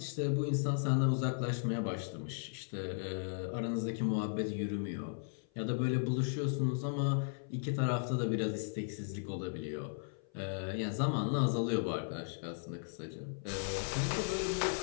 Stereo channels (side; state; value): right; silent; 54 dB below the other